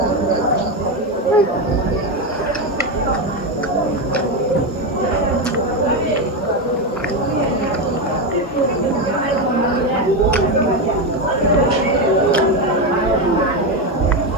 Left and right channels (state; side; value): normal; both; correlation 0.11